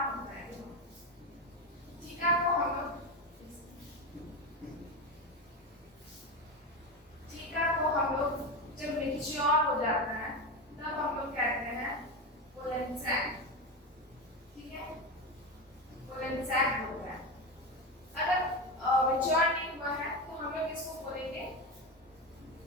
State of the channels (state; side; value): normal; both; correlation 0.17